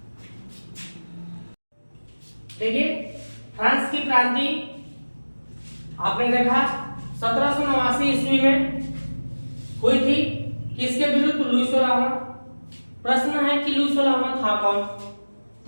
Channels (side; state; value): both; inverted; correlation -1.00